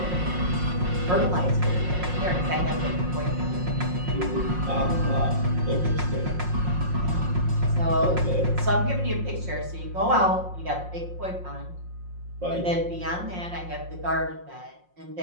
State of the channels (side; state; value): left; late; 5.6 ms